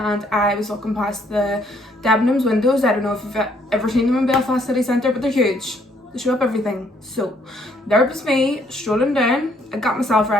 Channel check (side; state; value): both; normal; correlation 0.67